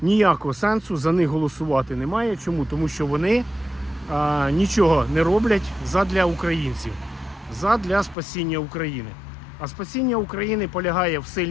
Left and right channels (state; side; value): drops out; right; at 8.2 s